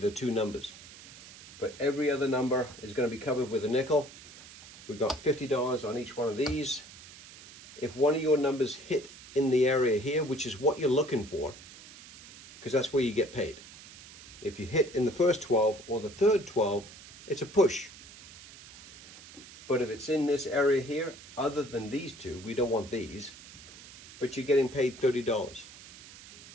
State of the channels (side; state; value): right; noise; hiss, 18 dB below the sound